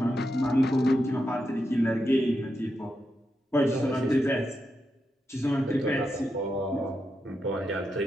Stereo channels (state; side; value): normal; both; correlation 0.85